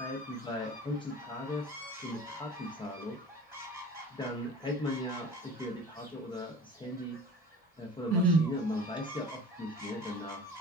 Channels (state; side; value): normal; both; correlation 0.40